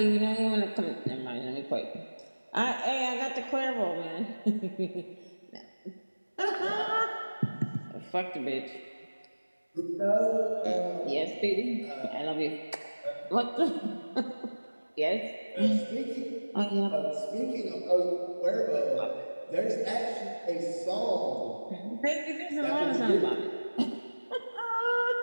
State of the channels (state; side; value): inverted; both; correlation -1.00